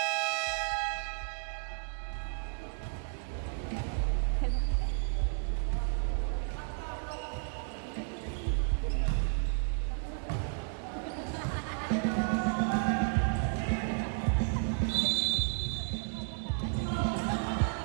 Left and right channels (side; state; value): left; silent; 56 dB below the other